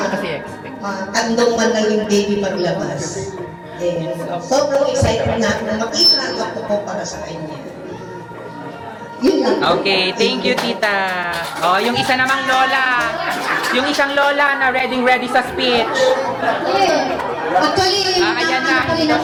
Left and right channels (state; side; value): identical; both; correlation 1.00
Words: kandong man lang yung baby paglabas. And sobrang excited na makita ang ako ko para sa kanya. Yun lang. Okay, thank you, tita. Yung isa namang lola. Yung isang lola na ready sa speech. Actually, ayan na. na